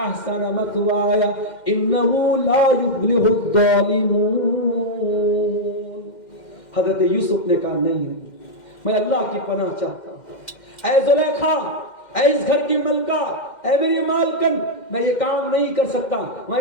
مثوایا انہ لا یفلح الظالمون. حضرت یوسف نے کہا نہیں میں اللہ کی پناہ چاہتا ہوں. اے زلیخا، اے اس گھر کی ملکہ، اے میری مالکن، میں یہ کام نہیں کر سکتا، میں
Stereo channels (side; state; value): right; late; 2.1 ms